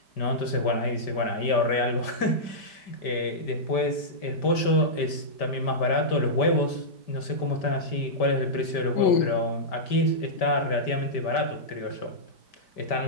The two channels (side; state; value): right; late; 5.1 ms